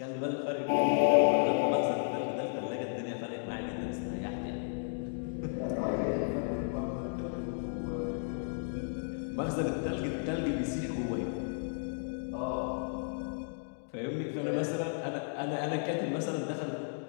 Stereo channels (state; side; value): silent; right; digital silence